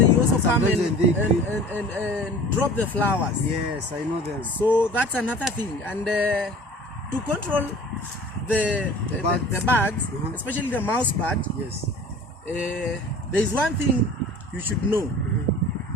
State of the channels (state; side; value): normal; both; correlation 0.43